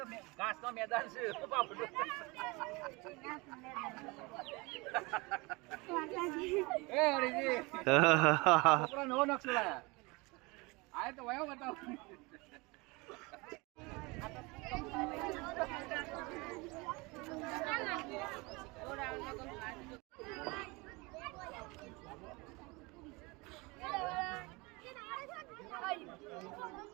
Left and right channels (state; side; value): quieter; left; 25.6 dB